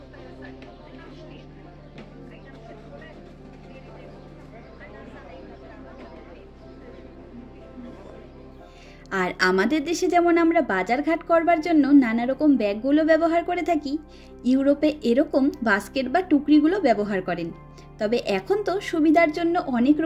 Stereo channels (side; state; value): both; identical; correlation 1.00